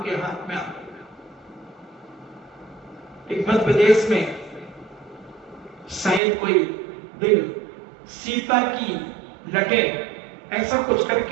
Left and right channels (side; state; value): left; drops out; at 6.2 s